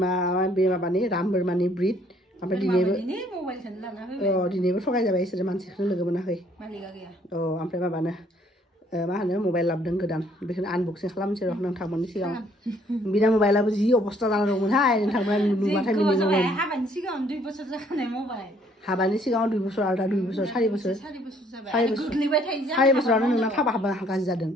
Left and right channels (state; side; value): normal; both; correlation 0.63